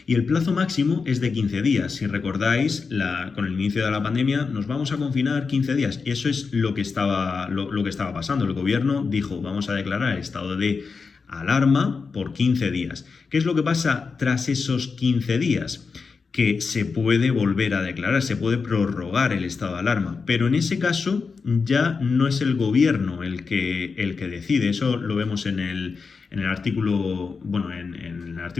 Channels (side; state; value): right; quieter; 4.9 dB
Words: Y el plazo máximo es de 15 días. Si recordáis, con el inicio de la pandemia nos vamos a confinar 15 días. Y eso es lo que estaba pasando. El gobierno dijo: vamos a declarar el estado de alarma por 15 días. ¿Qué es lo que pasa tras esos 15 días? Que se puede volver a declarar, se puede prorrogar el estado de alarma, pero en ese caso ya no es el gobierno el que decide. Eso lo vemos en el artículo, bueno, en el